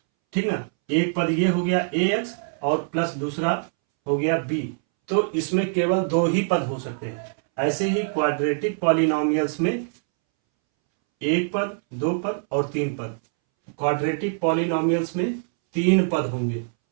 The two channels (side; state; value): left; silent; 63 dB below the other